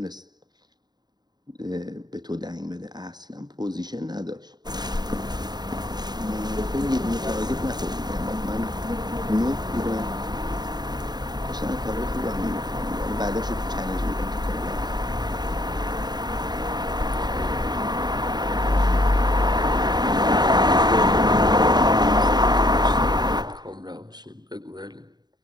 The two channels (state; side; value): late; left; 0.20 ms